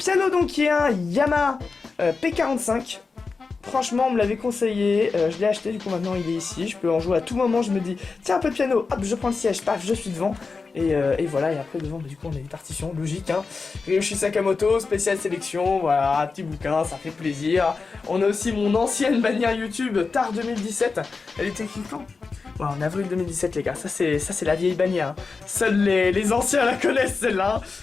donc qui est un Yamaha P45. Franchement, on me l'avait conseillé, je l'ai acheté, du coup maintenant il est ici, je peux en jouer à tout moment, je me dis, tiens un peu de piano, hop, je prends le siège, paf, je suis devant, et voilà, et après devant, du coup on a des partitions, logique, hein, Ryoshi Sakamoto, spéciale sélection, voilà, petit bouquin, ça fait plaisir. On a aussi mon ancienne bannière YouTube, Tard 2017, elle était écrite quand ? Ouais, en avril 2017 les gars, ça c'est la vieille bannière, hein. Seuls les anciens la connaissent celle-là, hein.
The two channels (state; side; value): quieter; right; 4.5 dB